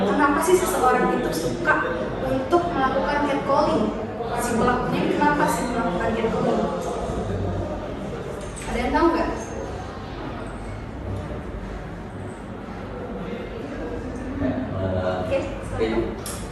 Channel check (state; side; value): identical; both; correlation 1.00